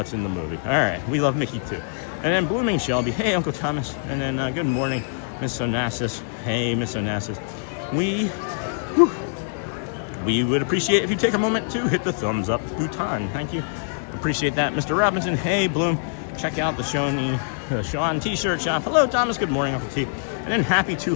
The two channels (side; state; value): right; silent; digital silence